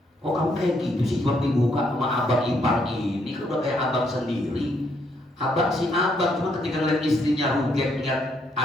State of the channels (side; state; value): both; normal; correlation 0.73